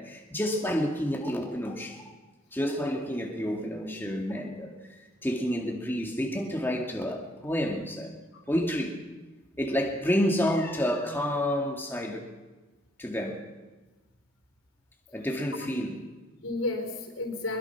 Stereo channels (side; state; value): both; normal; correlation 0.70